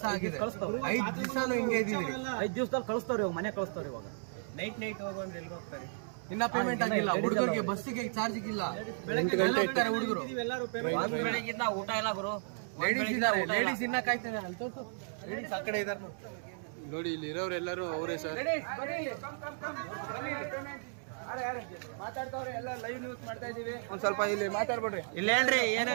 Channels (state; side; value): silent; left; digital silence